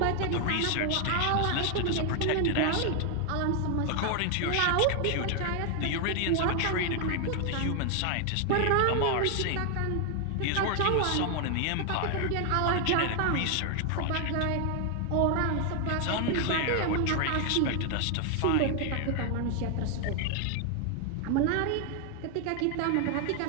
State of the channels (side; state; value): both; different; correlation 0.00